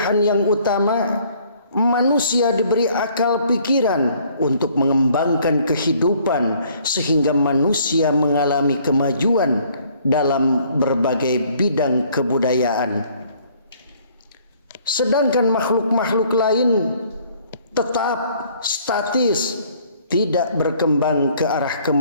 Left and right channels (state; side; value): inverted; both; correlation -0.60